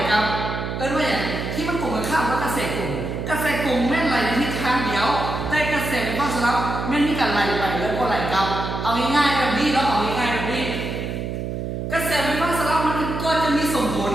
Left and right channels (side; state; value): right; noise; hum, 4 dB below the sound